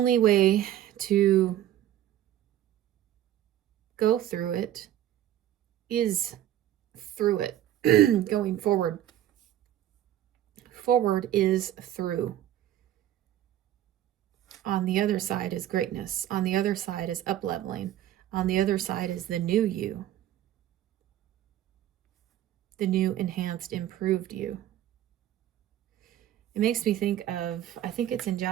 way to go through it is through it. Going forward. Forward is through. On the other side is greatness. On the other side is up-leveling. On the other side is the new you. The new, enhanced, improved you. It makes me think of, I think it's in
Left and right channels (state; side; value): quieter; left; 12.3 dB